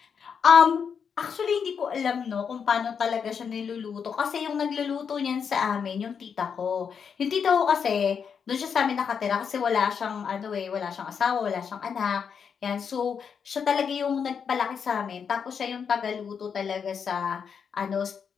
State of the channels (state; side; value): quieter; right; 6.7 dB